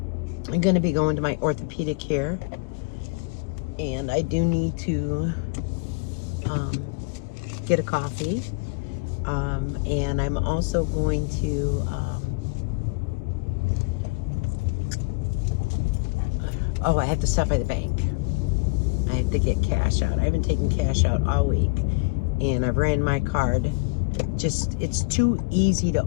going to be going to my orthopedic here. And I do need to get a coffee. And I'm also going to, I have to stop by the bank. I have to get cash out. I haven't taken cash out all week. And I've ran my card. It's too easy to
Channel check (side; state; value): right; quieter; 28.6 dB